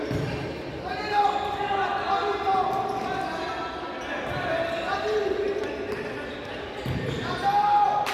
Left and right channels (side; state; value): both; identical; correlation 1.00